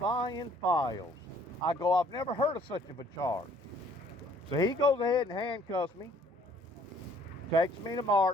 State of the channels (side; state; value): both; normal; correlation 0.59